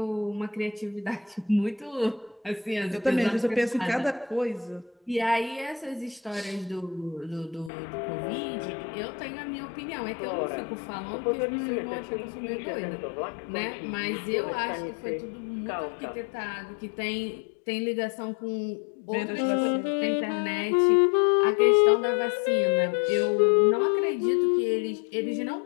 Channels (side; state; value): right; drops out; at 7.7 s